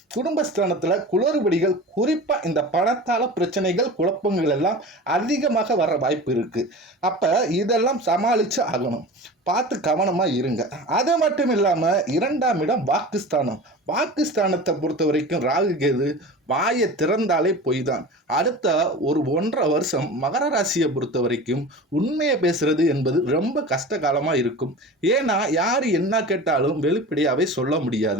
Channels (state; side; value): normal; both; correlation 0.34